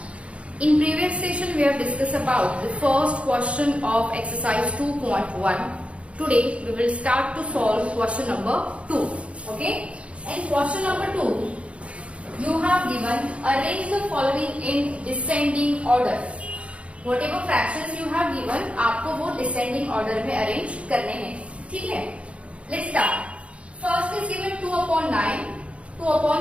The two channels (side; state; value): left; late; 0.061 ms